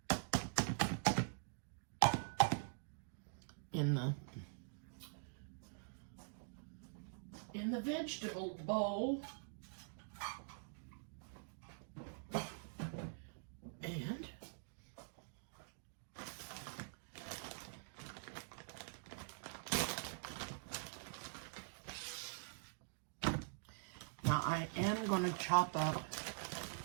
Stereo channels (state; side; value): silent; left; digital silence